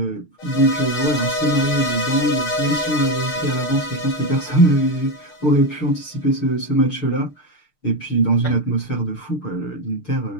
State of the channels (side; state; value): right; late; 6.6 ms